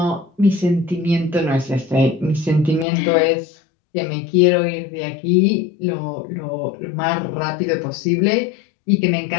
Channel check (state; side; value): drops out; right; at 2.9 s